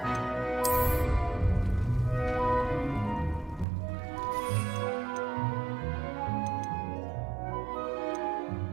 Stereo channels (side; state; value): left; drops out; at 3.7 s